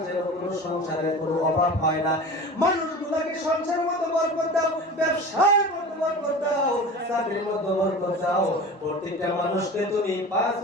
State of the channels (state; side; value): normal; both; correlation 0.35